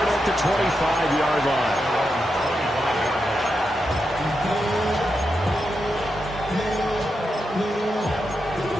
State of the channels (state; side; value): normal; both; correlation 0.86